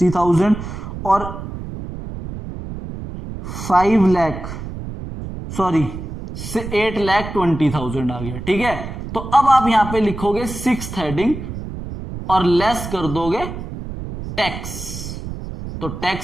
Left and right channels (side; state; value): right; noise; rumble, 9 dB below the sound